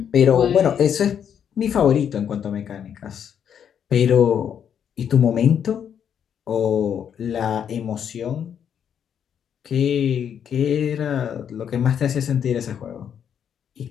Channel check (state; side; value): quieter; right; 8.4 dB